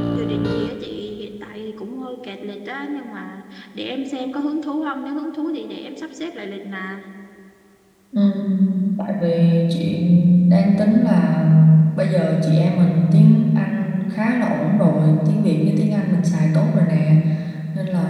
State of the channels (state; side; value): identical; both; correlation 1.00